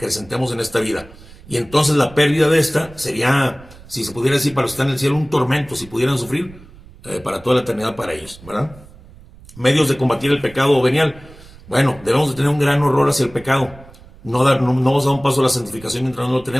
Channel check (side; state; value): right; noise; rumble, 21 dB below the sound